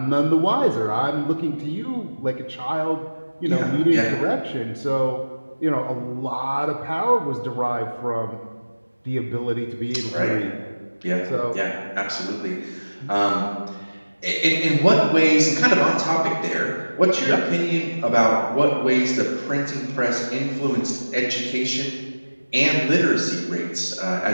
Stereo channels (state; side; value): inverted; both; correlation -1.00